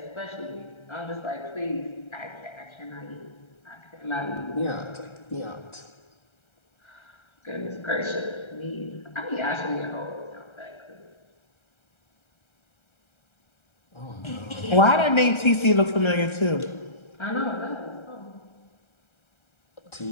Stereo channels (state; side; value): late; right; 1.3 ms